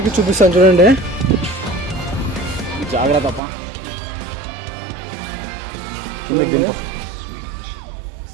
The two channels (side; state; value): left; drops out; at 3.4 s